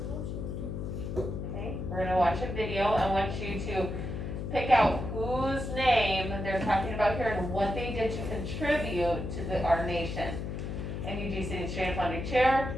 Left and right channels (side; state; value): left; noise; hum, 5 dB below the sound